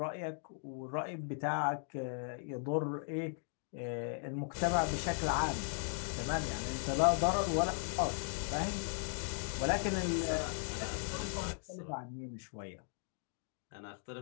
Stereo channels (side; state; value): right; silent; digital silence